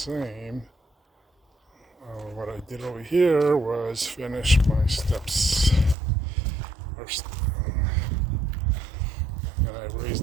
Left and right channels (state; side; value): drops out; left; at 6.0 s